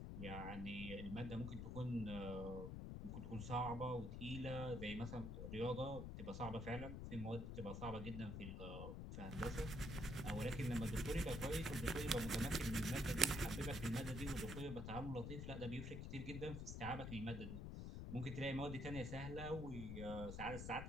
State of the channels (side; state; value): left; noise; rumble, 5 dB below the sound